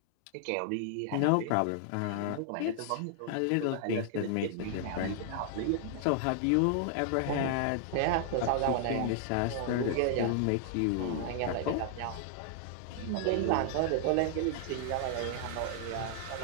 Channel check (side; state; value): both; different; correlation -0.01